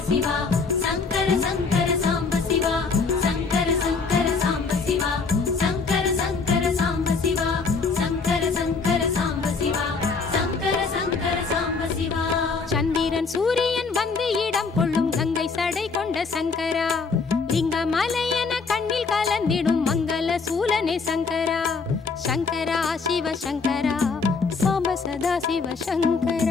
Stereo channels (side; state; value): right; quieter; 4.7 dB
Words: சிவா சங்கர சங்கர சாம்ப சிவா சங்கர சங்கர சாம்ப சிவா சங்கர சங்கர சாம்ப சிவா சங்கர சங்கர சாம்ப சிவா சங்கர சங்கர சாம்ப சிவா சந்திரன் சூரியன் வந்து இடம் கொள்ளும் கங்கை சடை கொண்ட சங்கரா லிங்கமலையன கண்ணில் கலந்திடும் மங்கள சூலனே சங்கரா சங்கரா சிவ சங்கரா சாம்ப சதா சிவ